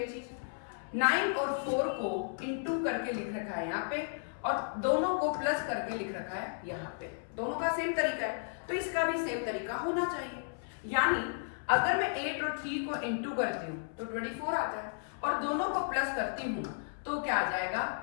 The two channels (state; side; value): silent; right; 55 dB below the other